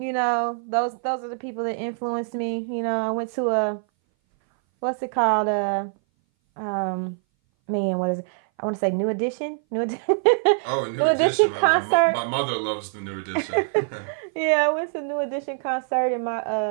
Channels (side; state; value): left; silent; 59 dB below the other